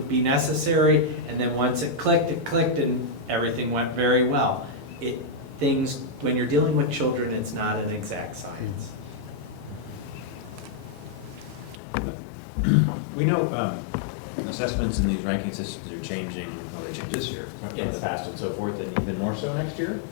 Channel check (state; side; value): drops out; right; at 11.8 s